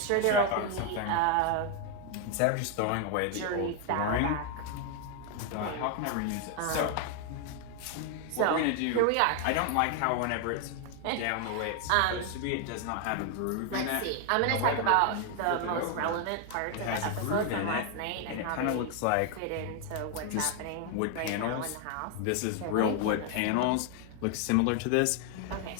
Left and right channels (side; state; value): both; different; correlation 0.01